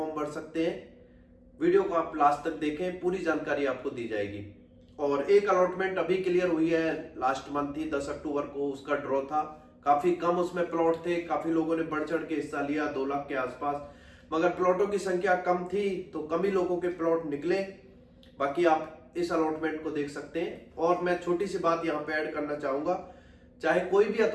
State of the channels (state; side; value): identical; both; correlation 1.00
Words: भर सकते हैं, वीडियो को आप लास्ट तक देखें, पूरी जानकारी आपको दी जाएगी। और एक अलॉटमेंट अभी क्लियर हुई है, लास्ट मंथ ही 10 अक्टूबर को उसका ड्रॉ था। काफी कम उसमें प्लॉट थे, काफी लोगों ने बढ़ चढ़ के हिस्सा लिया, 2 लाख के आसपास, मगर प्लॉटों की संख्या कम थी तो कम ही लोगों के प्लॉट निकले। बाकी आप इस अलॉटमेंट को देख सकते हैं। और मैं छोटी सी बात यहाँ पे ऐड करना चाहूंगा, चाहे कोई भी